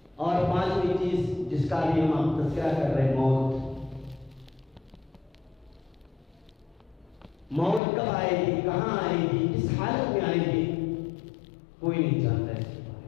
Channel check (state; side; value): drops out; right; at 7.8 s